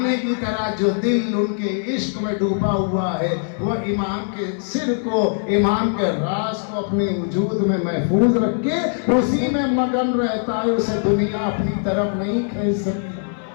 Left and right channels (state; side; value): silent; right; 65 dB below the other